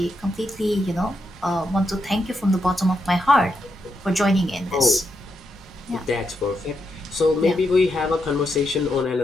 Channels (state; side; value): normal; both; correlation 0.83